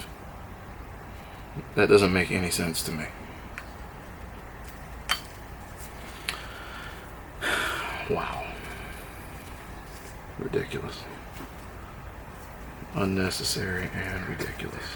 That doesn't make any sense to me. Wow. Ridiculous. Unnecessary and ridiculous.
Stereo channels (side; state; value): both; identical; correlation 1.00